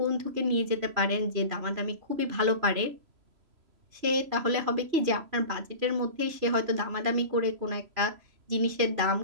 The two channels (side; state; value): left; late; 3.0 ms